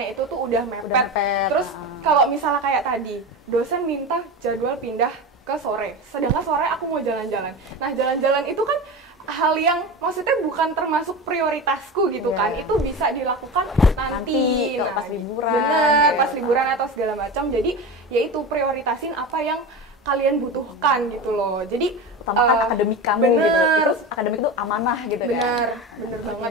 itu tuh udah mepet. Terus kalau misalnya kayak tadi, dosen minta jadwal pindah ke sore, sedangkan sore aku mau jalan-jalan. Nah, jalan-jalan itu kan hal yang maksudnya bukan termasuk prioritasku gitu kan, itu bisa dilakukan nanti kalau pas liburan, bener, pas liburan atau segala macam. Jadi ya itu prioritasin apa yang kalian butuhkan gitu loh. Jadi utamakan akademik kamu bener, gitu. Itu akademik itu amanah gitu bener, kan. bener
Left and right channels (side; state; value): both; normal; correlation 0.25